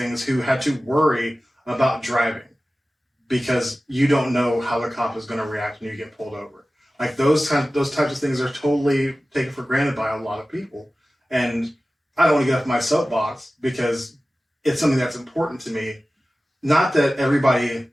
who had to worry about driving because you don't know how the cop is going to react when you get pulled over. Like those types of things are totally taken for granted by a lot of people. And I don't want to get off my soapbox because it's something that's important to me. Not that everybody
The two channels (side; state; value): both; normal; correlation 0.96